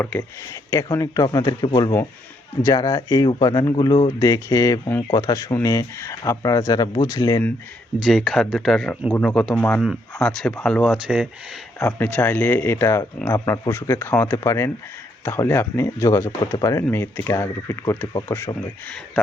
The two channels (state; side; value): normal; both; correlation 0.73